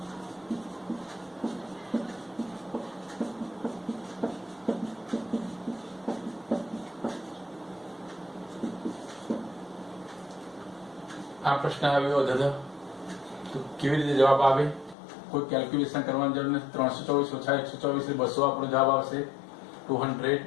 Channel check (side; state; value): right; drops out; at 15.0 s